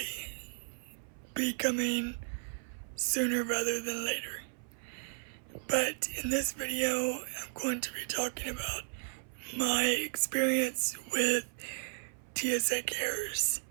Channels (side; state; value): left; silent; 55 dB below the other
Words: be coming sooner rather than later. But in this video, I'm going to be talking about my experience with TSA CARES.